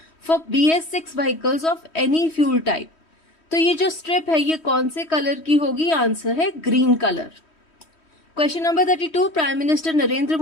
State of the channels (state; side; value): late; right; 3.1 ms